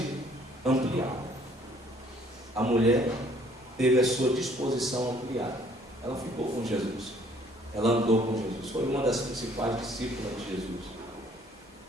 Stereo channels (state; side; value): normal; both; correlation 0.60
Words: ampliada. A mulher teve a sua disposição ampliada. Ela ficou com Jesus. Ela andou com Jesus. Foi uma das principais discípulas de Jesus.